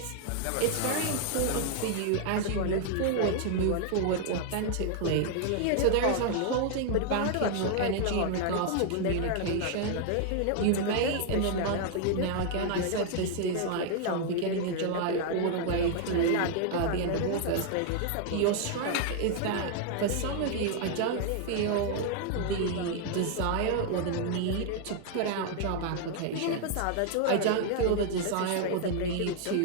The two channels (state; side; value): different; both; correlation 0.00